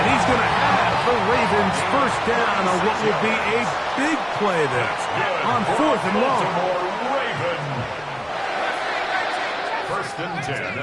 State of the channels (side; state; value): both; identical; correlation 1.00